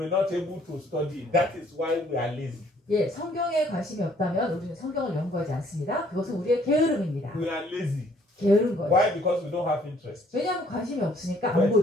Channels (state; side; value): normal; both; correlation 0.62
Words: not able to study. That is why we are lazy. 예, 성경에 관심이 없다면 우리는 성경을 연구하지 않습니다. 그것은 우리의 게으름입니다. We are lazy. 게으른 거예요. Why? Because we don't have interest. 왜냐하면 관심이 없으니까 안